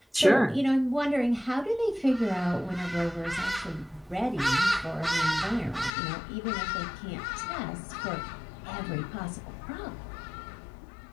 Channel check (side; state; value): right; drops out; at 5.9 s